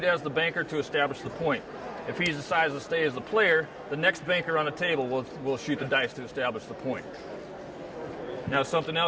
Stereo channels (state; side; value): identical; both; correlation 1.00